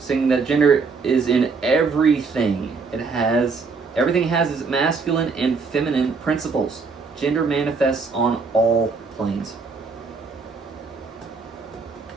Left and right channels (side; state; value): left; quieter; 4.6 dB